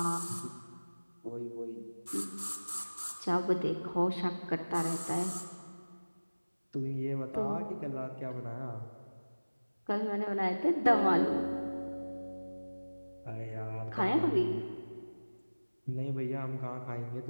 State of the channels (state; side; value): inverted; both; correlation -1.00